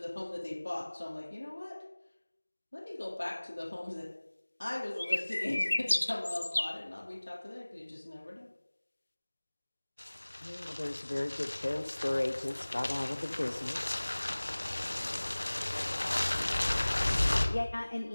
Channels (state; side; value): inverted; both; correlation -1.00